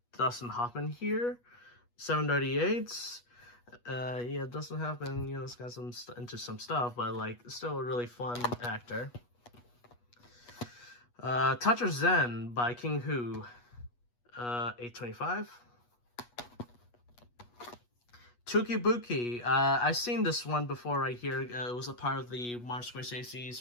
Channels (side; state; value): right; late; 8.3 ms